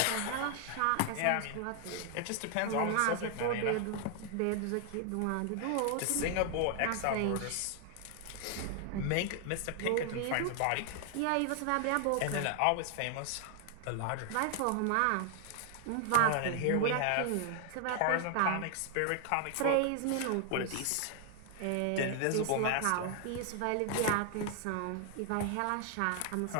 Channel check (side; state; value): both; different; correlation 0.00